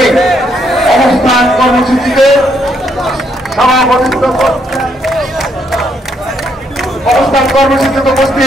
এই অবস্থান কর্মসূচিতে সভাপতিত্ব অবস্থান কর্মসূচিতে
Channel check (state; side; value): normal; both; correlation 0.73